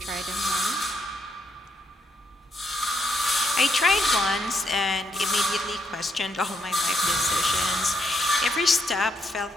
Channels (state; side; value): normal; both; correlation 0.76